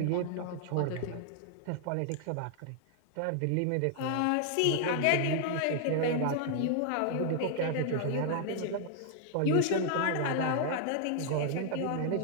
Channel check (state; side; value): different; both; correlation -0.01